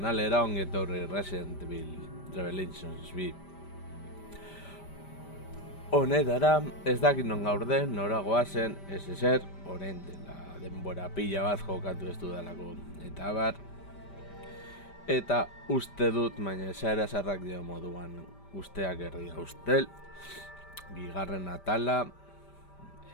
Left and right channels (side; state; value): right; late; 5.1 ms